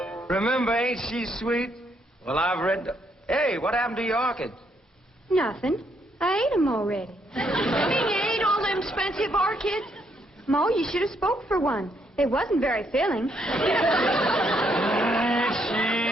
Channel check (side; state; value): both; normal; correlation 0.73